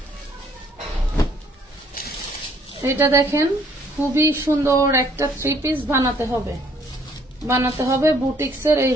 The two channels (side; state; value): both; normal; correlation 0.63